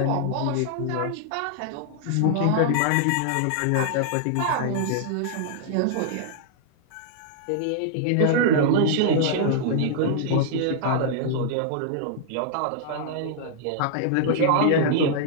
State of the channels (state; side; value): different; both; correlation -0.01